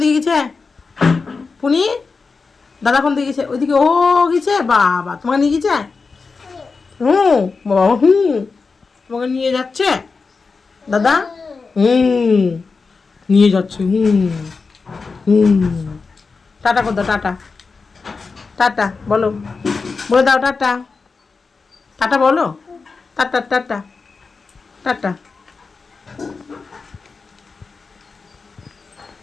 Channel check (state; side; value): quieter; right; 4.5 dB